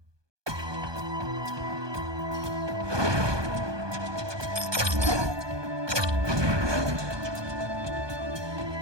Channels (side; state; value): left; late; 1.2 ms